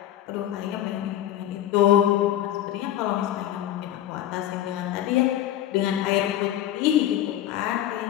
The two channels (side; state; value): right; quieter; 12.1 dB